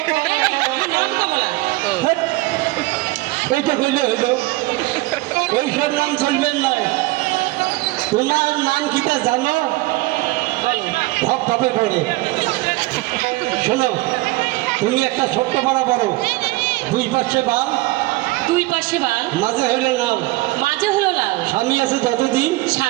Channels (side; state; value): left; quieter; 20.2 dB